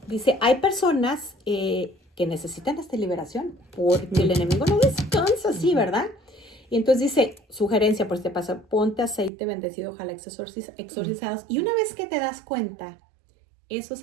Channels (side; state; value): left; drops out; at 9.3 s